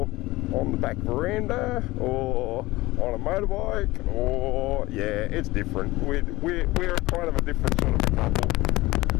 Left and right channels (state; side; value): quieter; right; 19.5 dB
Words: on the back veranda or on a motorbike, or yeah, it's different. We're kind of a different sort of a couple,